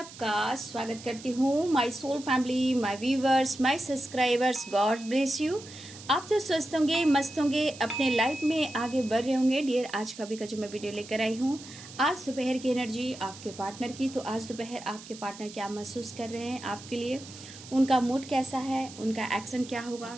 स्वागत करती हूँ। My soul family, my viewers, my subscribers, God bless you. आप तो स्वस्थ होंगे, मस्त होंगे, अपने लाइफ में आगे बढ़ रहे होंगे। डियर, आज का भी का जो मैं वीडियो लेकर आई हूँ, आज दोपहर की एनर्जी आपके पार्टनर की। तो आज दोपहर आपके पार्टनर क्या महसूस कर रहे हैं आपके लिए, उनका मूड कैसा है, उनका एक्शन क्या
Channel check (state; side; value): noise; right; hiss, 16 dB below the sound